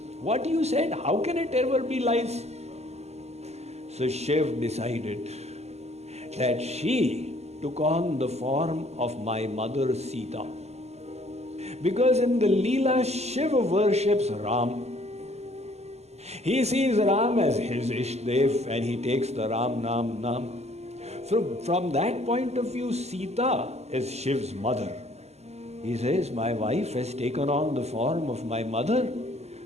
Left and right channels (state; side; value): late; left; 0.31 ms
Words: What you said, how can it ever be lies? So Shiv decided that she took on the form of my mother Sita. Because in the Leelas, Shiva worships Ram. He sees Ram as his Ishdev and he takes the Ram Nam. From that point of view, Sita is Shiv's mother. He says, my wife has taken on the form of my mother.